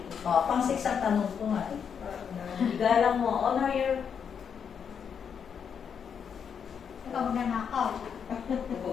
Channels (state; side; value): quieter; right; 7.2 dB